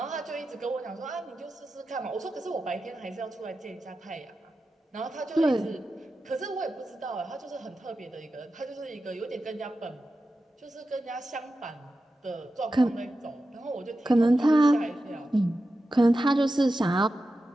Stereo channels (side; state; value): both; normal; correlation 0.92